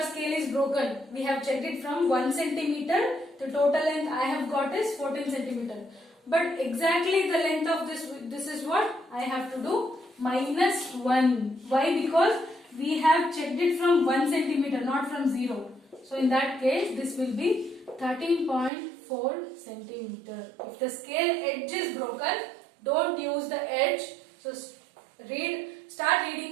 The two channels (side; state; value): left; drops out; at 18.7 s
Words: scale is broken. We have checked it from 1 centimeter. The total length I have got is 14 centimeter. But exactly the length of this is what I have to do, minus 1. Why? Because we have checked it from 1 centimeter, not from 0. So in that case, this will be 13.4 centimeter. If the scale edge is broken, don't use the edge. So start